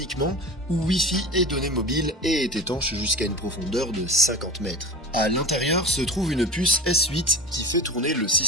où Wi-Fi est donné mobile et est étanche jusqu'à une profondeur de 50 mètres. À l'intérieur se trouve une puce S8 qui fait tourner le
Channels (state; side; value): normal; both; correlation 0.32